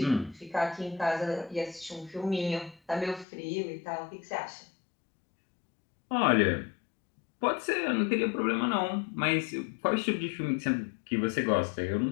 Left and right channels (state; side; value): drops out; right; at 3.2 s